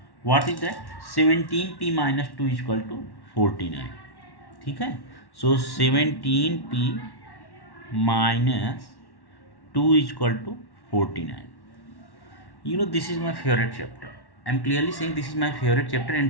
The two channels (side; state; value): right; late; 1.1 ms